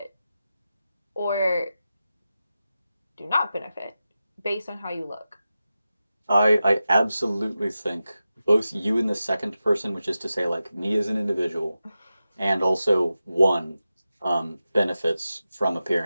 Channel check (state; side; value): inverted; both; correlation -0.93